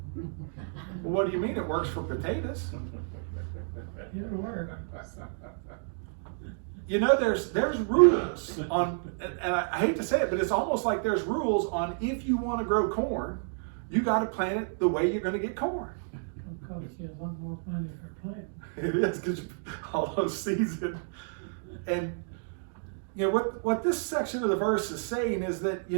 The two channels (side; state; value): left; silent; digital silence